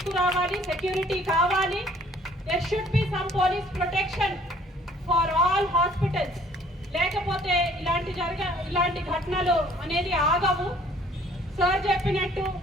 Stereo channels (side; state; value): both; normal; correlation 0.57